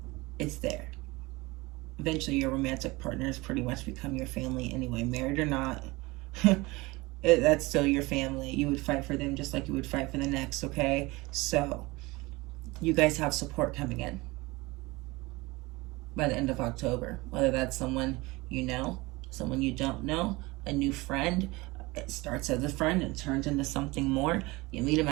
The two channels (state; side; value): quieter; left; 22.5 dB